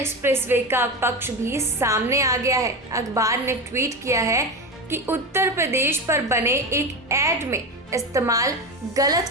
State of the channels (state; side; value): normal; both; correlation 0.20